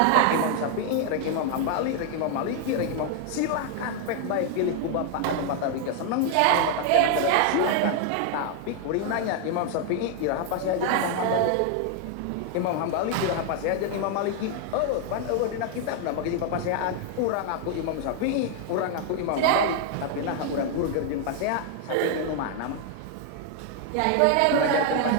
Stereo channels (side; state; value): both; different; correlation 0.00